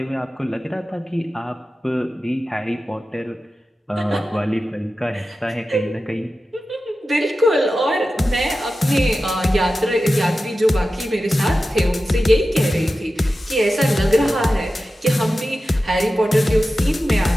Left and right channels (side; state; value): both; normal; correlation 0.93